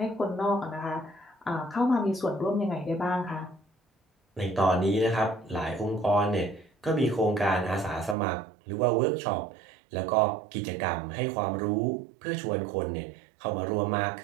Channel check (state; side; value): drops out; left; at 8.2 s